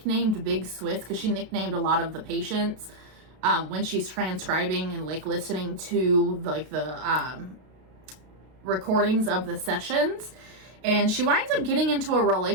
Big Swiss, because she nicknamed a lot of the patients when she's transcribing and listening to the recordings of the sessions. And she winds up getting into a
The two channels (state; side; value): late; left; 32 ms